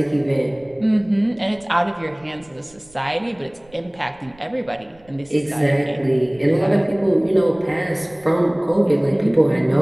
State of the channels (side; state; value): right; noise; rumble, 28 dB below the sound